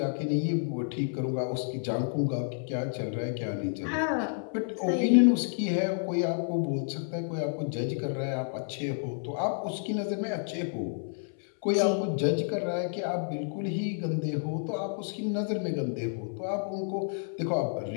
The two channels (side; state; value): right; silent; 58 dB below the other